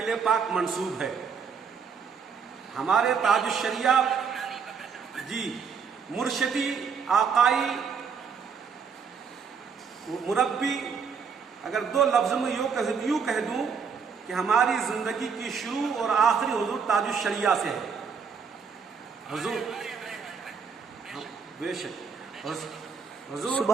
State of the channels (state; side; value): quieter; left; 6.1 dB